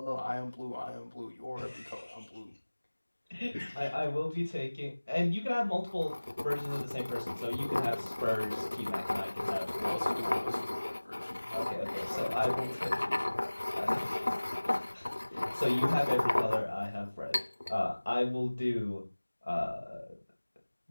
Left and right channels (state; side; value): inverted; both; correlation -1.00